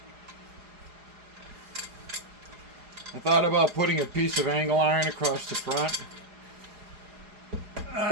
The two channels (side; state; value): left; late; 4.8 ms